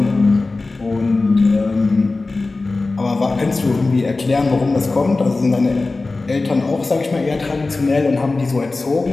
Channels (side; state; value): right; quieter; 3.4 dB